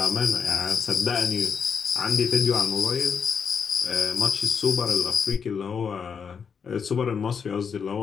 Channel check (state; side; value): quieter; right; 6.5 dB